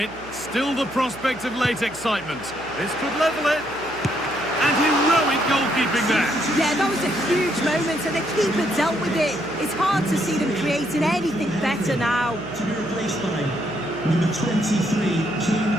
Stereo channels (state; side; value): noise; right; hum, 20 dB below the sound